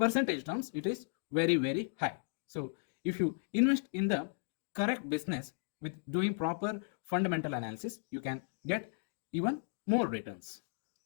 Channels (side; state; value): right; silent; digital silence